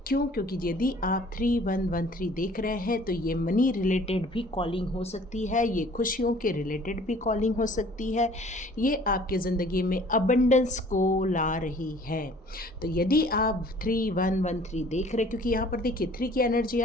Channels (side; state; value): both; normal; correlation 0.52